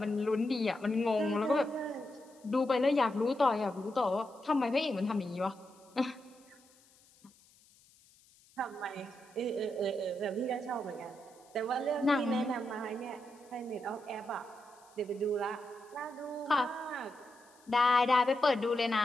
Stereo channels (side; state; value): left; noise; hiss, 29 dB below the sound